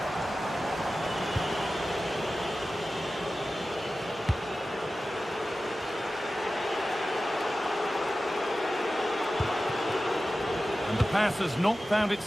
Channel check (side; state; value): both; normal; correlation 0.94